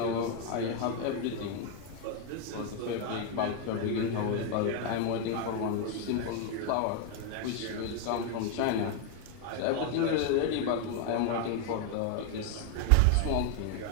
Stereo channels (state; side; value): different; both; correlation 0.01